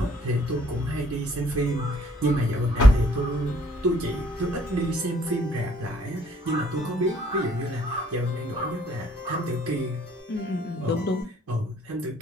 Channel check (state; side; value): normal; both; correlation 0.62